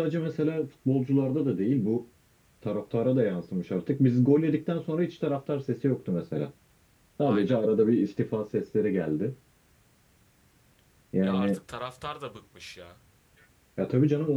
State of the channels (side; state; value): both; identical; correlation 1.00